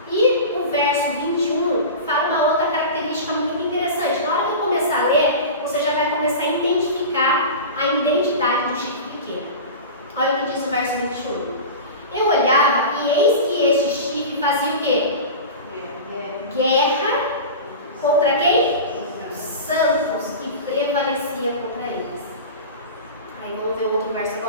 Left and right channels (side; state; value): both; inverted; correlation -0.30